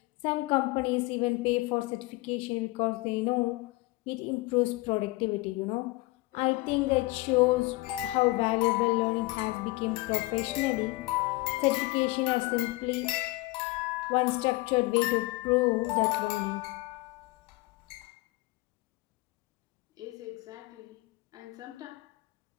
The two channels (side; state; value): right; quieter; 21.7 dB